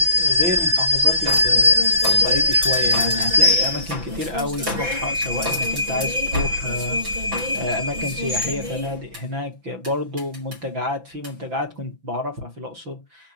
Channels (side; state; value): left; late; 5.9 ms